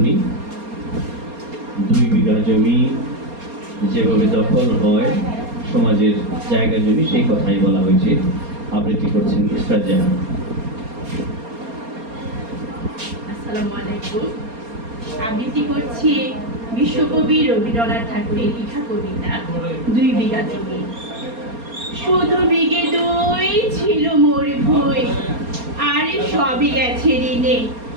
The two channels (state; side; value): late; left; 4.3 ms